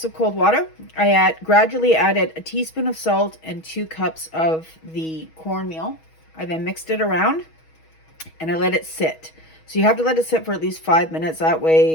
of cold water. I gradually added a teaspoon of salt and 2 cups of the cornmeal. I then mixed it around and I let it sit. So you have to let it sit for at least 5 minutes. That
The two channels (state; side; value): late; right; 6.3 ms